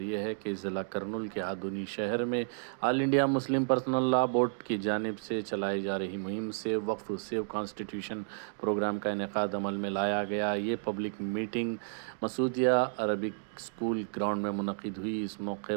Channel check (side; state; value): left; silent; digital silence